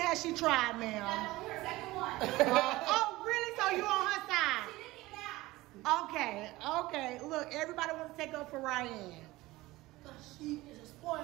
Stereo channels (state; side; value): quieter; left; 19.1 dB